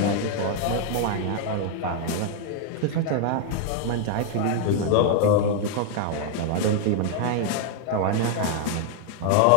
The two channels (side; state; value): both; different; correlation 0.00